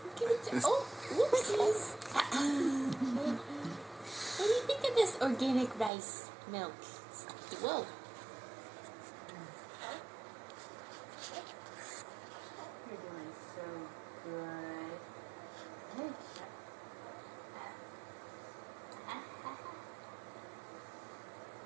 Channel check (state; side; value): drops out; left; at 5.9 s